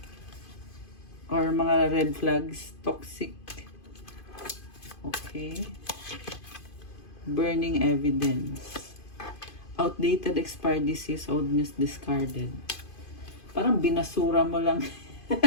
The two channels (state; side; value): late; right; 2.5 ms